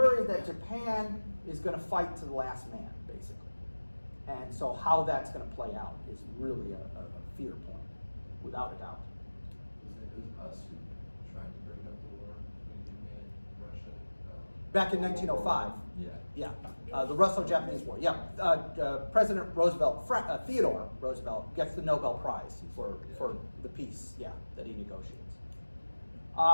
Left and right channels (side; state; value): both; inverted; correlation -1.00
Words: that Japan is going to fight to the last man, basically. And so how that's going to play out is really a fear point, without a doubt. It was us who tried to break up the war between Japan and Russia. Back in 1905. Yeah. Yeah, the Russo-Japanese War. Yeah, President Roosevelt, Theodore Roosevelt, gets the Nobel Prize for the peace. Yeah, that he negotiates.